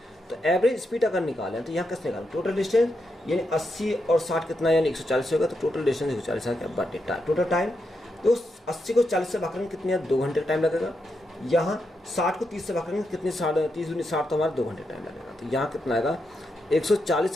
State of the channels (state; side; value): normal; both; correlation 0.83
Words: तो एवरेज स्पीड अगर निकालें तो यहाँ कैसे निकालें, टोटल डिस्टेंस यानी 80 और 60 कितना यानी 140 होगा, तो टोटल डिस्टेंस 140 है, बट टोटल टाइम तो 80 को 40 से भाग करेंगे कितने 2 घंटे का टाइम लगेगा, यहाँ 60 को 30 से भाग करेंगे कितने 30 तो हमारा 2 घंटे टाइम लगेगा, तो यहाँ कितना आएगा